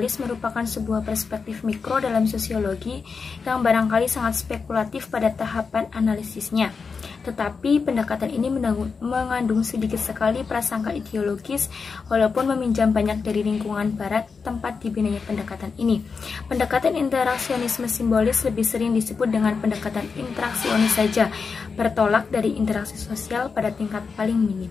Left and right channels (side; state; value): right; quieter; 5.2 dB